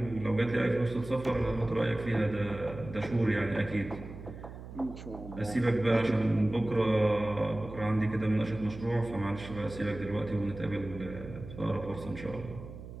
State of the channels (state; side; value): noise; right; hum, 12 dB below the sound